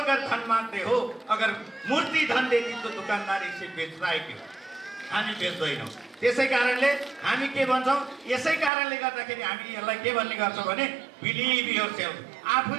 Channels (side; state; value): left; drops out; at 8.7 s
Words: धन माग्दै हो, अगर मूर्ति धन देती तो दुकानदार इसे बेच्दा है क्यों? हामी बेच्दैनौँ। त्यसै कारणले हामी के भन्छौँ, यसै कारणले गर्दाखेरि हामी यसलाई के भन्ने गर्छौँ भने बिलिभ योरसेल्फ।